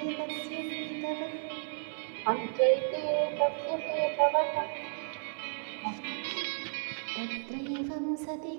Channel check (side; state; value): left; silent; digital silence